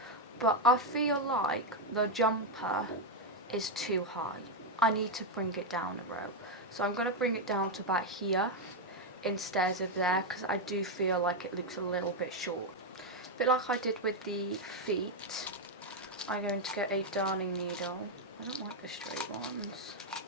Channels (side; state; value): both; normal; correlation 0.02